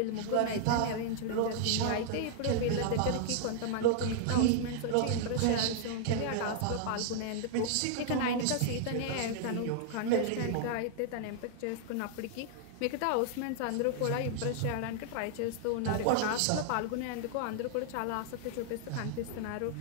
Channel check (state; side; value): different; both; correlation -0.01